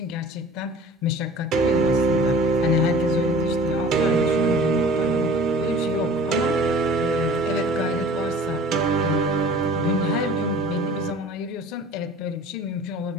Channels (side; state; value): both; normal; correlation 0.45